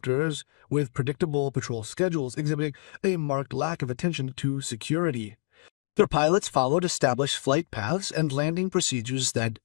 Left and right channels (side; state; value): right; silent; digital silence